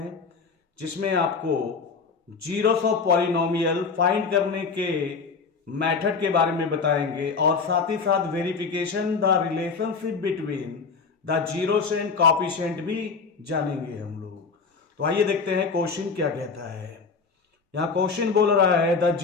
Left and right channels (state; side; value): quieter; right; 5.0 dB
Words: जिसमें आपको जीरोस ऑफ पॉलिनोमियल फाइंड करने के मेथड के बारे में बताएंगे और साथ ही साथ verification the relationship between the zeros and coefficient भी जानेंगे हम लोग। तो आइए देखते हैं क्वेश्चन क्या कहता है। यहाँ क्वेश्चन बोल रहा है द